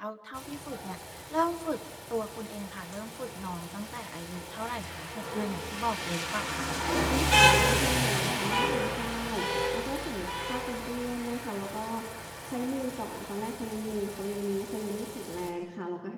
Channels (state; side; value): identical; both; correlation 1.00